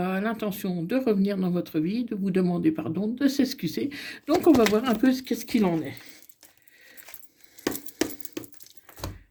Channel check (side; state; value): both; identical; correlation 1.00